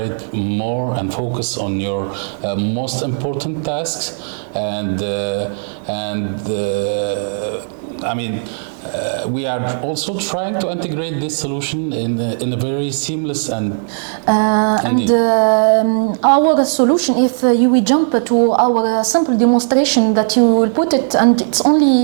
more and focus on your most important tasks. We are also trying to integrate this solution in a very seamless and our solution, if we jump to our simple demonstration that you will put it, and it's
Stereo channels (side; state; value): left; silent; digital silence